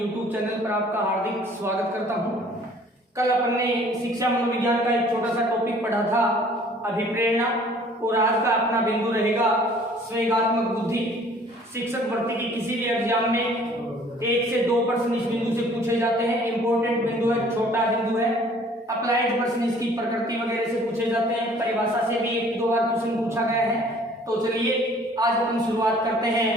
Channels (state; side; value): normal; both; correlation 0.54